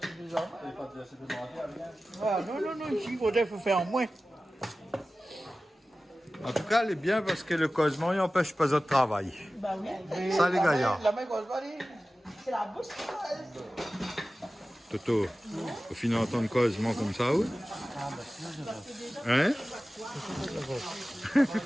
des enfants. Ah, non, ici, il faudrait faire en moins. En tout cas, elle est bien parce que le causement il n'empêche pas de travail. Bah oui. Ça, les gars. La main cause pas dit. C'est la bouche. Toto, au final, entendre causement comme ça, ou? Hein?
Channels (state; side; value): normal; both; correlation 0.96